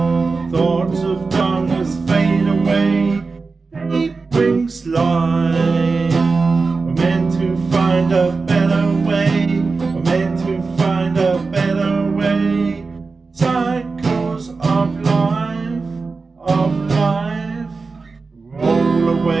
Thoughts of darkness fade away. Day brings light. We're meant to find a better way. We're meant to find a better way. Cycles of life, roll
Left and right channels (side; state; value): left; quieter; 4.2 dB